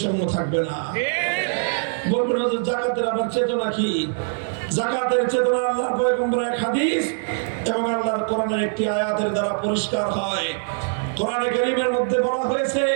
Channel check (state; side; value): silent; left; digital silence